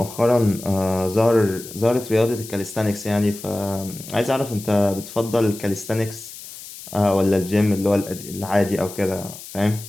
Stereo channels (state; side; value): noise; left; hiss, 14 dB below the sound